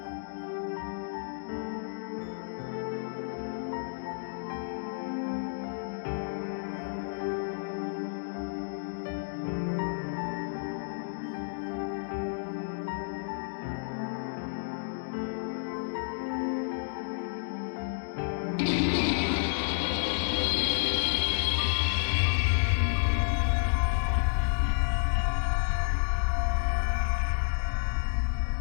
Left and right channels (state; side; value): silent; right; digital silence